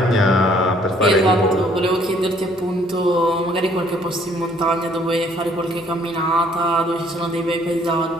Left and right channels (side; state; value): both; normal; correlation 0.62